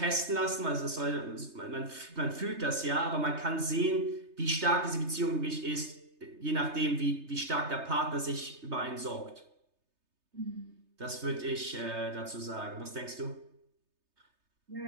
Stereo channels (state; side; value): late; left; 3.3 ms